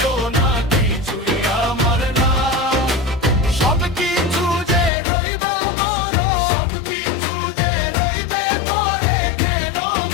না, কিছুই আমার না। সব কিছু যে রইব মরণ, সব কিছু যে রইবে পরে, কেন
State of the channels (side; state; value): right; drops out; at 4.9 s